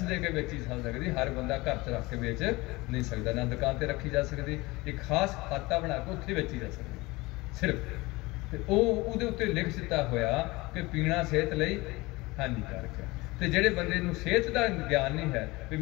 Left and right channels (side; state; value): right; quieter; 22.1 dB